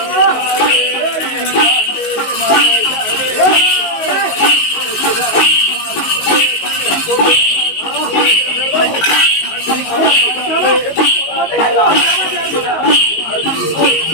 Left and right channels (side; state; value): right; late; 19 ms